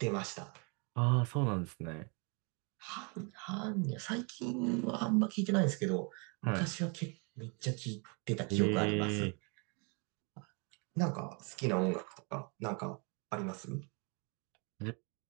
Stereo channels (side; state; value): left; quieter; 34.4 dB